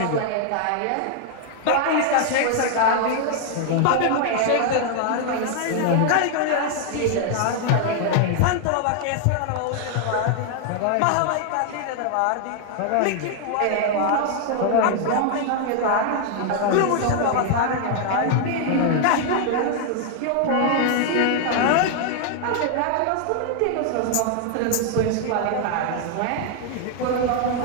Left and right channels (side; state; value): both; different; correlation 0.00